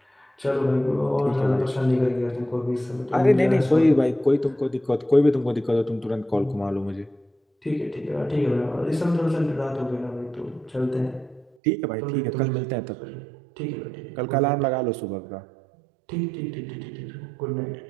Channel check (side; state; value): left; drops out; at 11.6 s